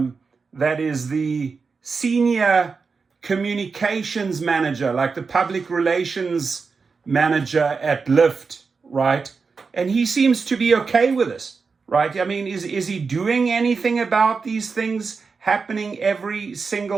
is the senior communications manager, like the public relations manager at Lyft, right? And he seems to be okay with this, right? I mean, is he doing anything about these things happening every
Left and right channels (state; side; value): quieter; left; 4.9 dB